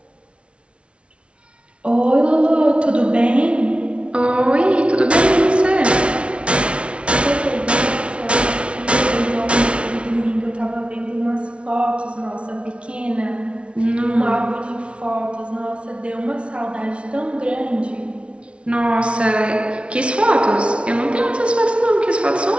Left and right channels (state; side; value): late; left; 0.060 ms